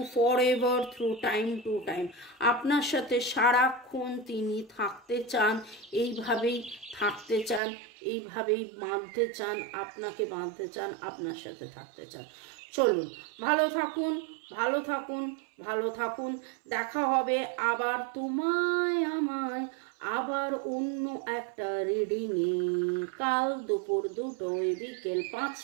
forever through time to time. আপনার সাথে সারাক্ষণ তিনি থাকতে চান, এইভাবেই থাকতে চান, এইভাবেই বাঁধতে চান, আপনাকে বাঁধতে চান, আপনার সাথে থাকতে চান। চলুন, ভালো থাকুন, ভালো থাকুন, ভালো থাকুন। দেখা হবে আবার তোমায় আমায় আবার অন্য একটা রিডিংয়ে, কাল দুপুর 2টোয়, বিকেল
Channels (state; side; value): drops out; left; at 7.6 s